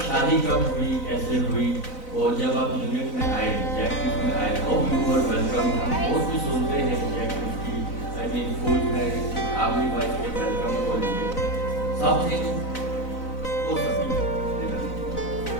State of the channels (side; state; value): right; late; 4.0 ms